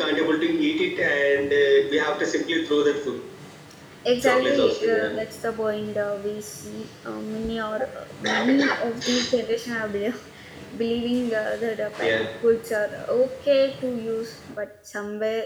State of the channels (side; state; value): both; identical; correlation 1.00